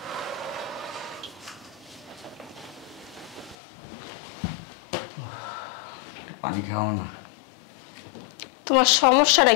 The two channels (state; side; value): drops out; right; at 3.6 s